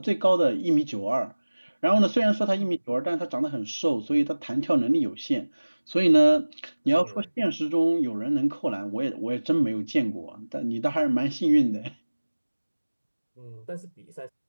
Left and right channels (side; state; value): both; inverted; correlation -1.00